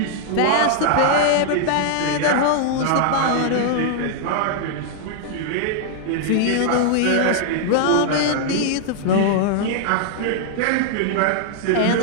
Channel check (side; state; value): both; different; correlation -0.01